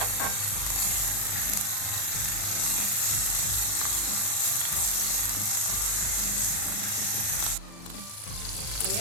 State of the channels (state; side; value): late; right; 39 ms